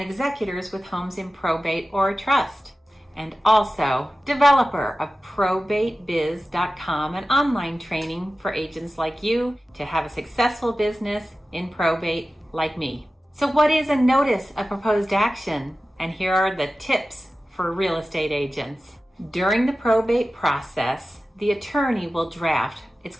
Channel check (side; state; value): both; normal; correlation 0.95